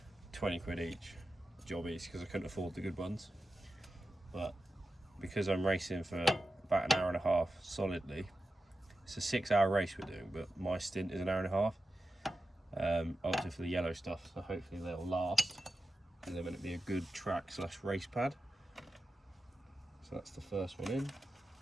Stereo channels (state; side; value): normal; both; correlation 0.92